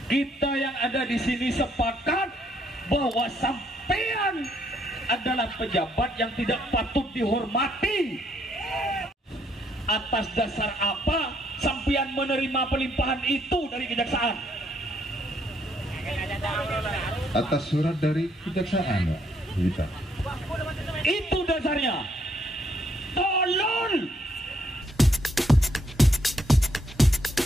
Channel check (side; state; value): both; normal; correlation 0.71